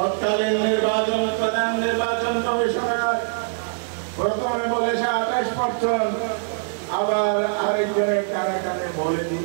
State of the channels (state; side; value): silent; left; digital silence